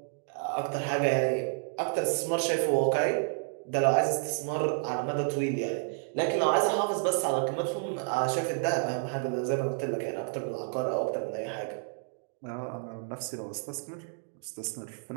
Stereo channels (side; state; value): left; silent; digital silence